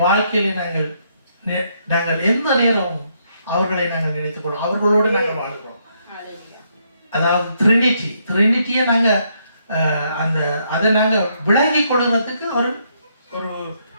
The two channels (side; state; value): both; inverted; correlation -0.74